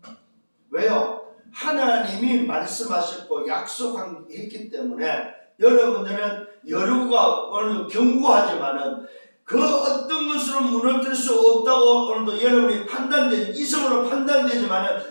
왜요? 하나님이 말씀하셨고 약속했기 때문에 여러분들은 여리고가 오늘도 견고하지만은 그 어떤 것으로 무너뜨릴 수 없다고 오늘도 여러분이 이성으로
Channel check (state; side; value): inverted; both; correlation -1.00